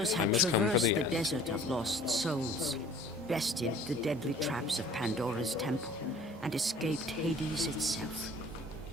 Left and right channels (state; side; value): normal; both; correlation 0.50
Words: had must come for traversed the the end. desert of lost souls, bested the deadly traps of Pandora's temple, and escaped Hades itself.